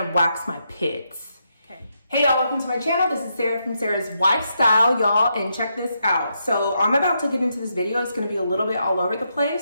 wax my pits, okay? Hey y'all, welcome to my channel. This is Sarah from Sarahswifestyle, y'all, and check this out. So I'm about to get into this video. It's gonna be a little bit all over the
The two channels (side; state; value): both; inverted; correlation -0.81